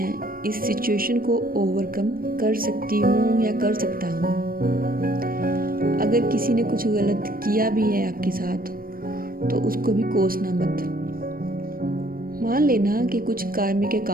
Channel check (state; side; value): late; left; 0.42 ms